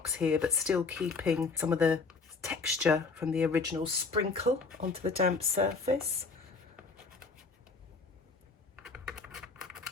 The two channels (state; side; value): quieter; right; 4.4 dB